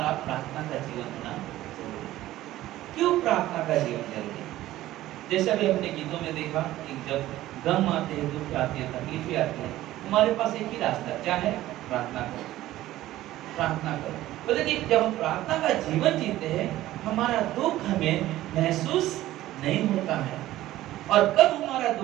प्रार्थना का जीवन होना जरूरी है। क्यों प्रार्थना का जीवन जरूरी है? जैसा भी हमने गीतों में देखा कि जब गम आते हैं, दुख आते हैं, तकलीफें आती हैं, हमारे पास एक ही रास्ता क्या है? प्रार्थना करो, प्रार्थना करो। तो देखिए जब हम प्रार्थना का जीवन जीते हैं, हमारा दुख हमें महसूस नहीं होता है। और कब हमारा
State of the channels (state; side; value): quieter; left; 15.1 dB